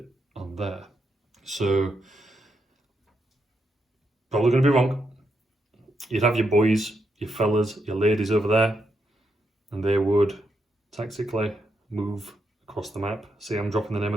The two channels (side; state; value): both; normal; correlation 0.81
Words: on there. So, probably going to be wrong. You'd have your boys, your fellas, your ladies over there, and they would tactically move across the map. See, I'm dropping the name